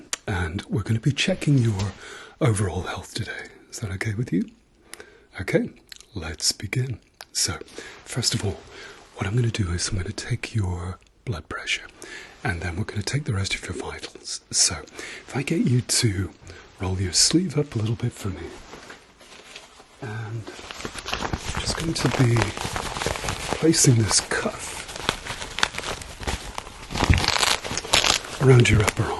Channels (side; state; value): both; identical; correlation 1.00